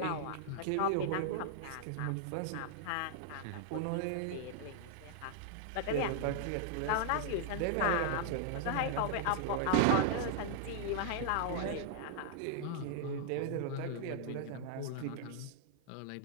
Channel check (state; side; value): different; both; correlation -0.01